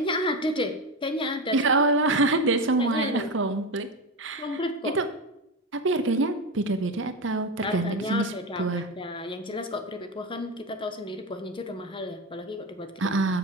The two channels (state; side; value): normal; both; correlation 0.18